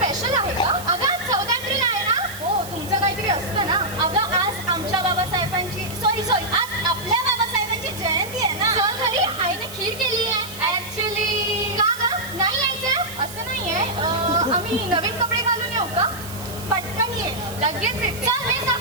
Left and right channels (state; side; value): noise; right; hiss, 13 dB below the sound